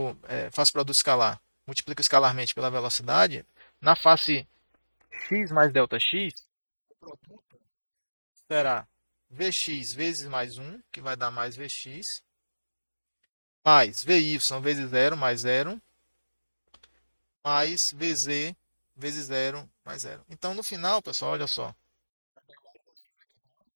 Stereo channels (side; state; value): both; inverted; correlation -1.00